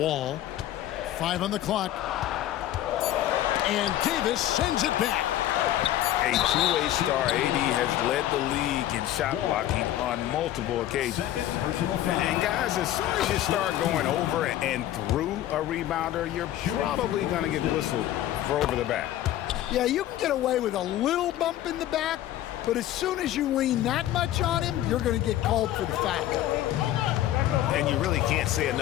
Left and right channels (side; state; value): right; quieter; 13.1 dB